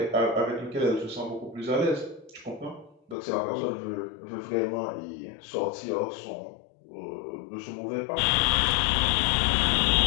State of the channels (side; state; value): right; drops out; at 3.2 s